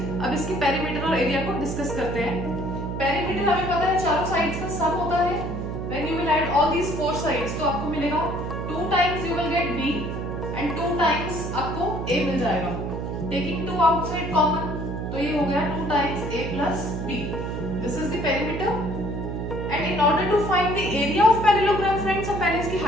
अब इसकी पेरीमीटर और एरिया को डिस्कस करते हैं. पेरीमीटर हमें पता है चारों साइड्स का सम होता है. When you will add all these 4 sides तो आपको मिलेगा 2 times you will get b and 2 times आपको a मिल जाएगा. टेकिंग 2 आउटसाइड कॉमन तो ये हो गया 2 times a plus b. This is the perimeter. And in order to find the area of parallelogram friends हम पहले इसकी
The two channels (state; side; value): noise; right; hum, 4 dB below the sound